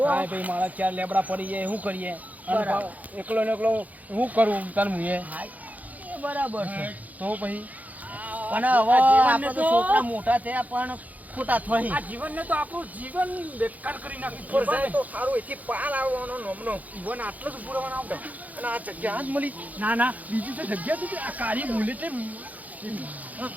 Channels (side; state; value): left; late; 0.078 ms